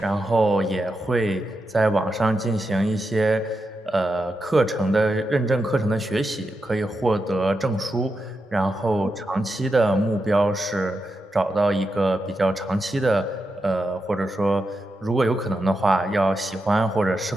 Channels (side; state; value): both; normal; correlation 0.87